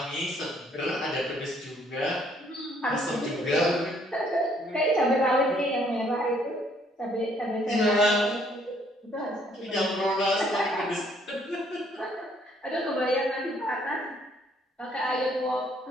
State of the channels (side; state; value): both; normal; correlation 0.65